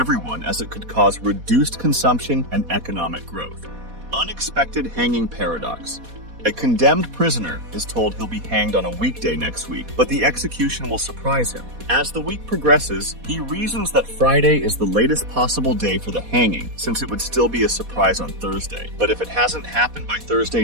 as it could cause reduced consumption and economic growth. Unexpected hanging paradox. A condemned prisoner is told he'll be hanged on a weekday next week, but the execution will surprise him. As the week progresses, he reasons that Friday is the latest possible day for the hanging, since it would still be a surprise on Thursday. But if it hasn't happened by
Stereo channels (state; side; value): late; left; 4.2 ms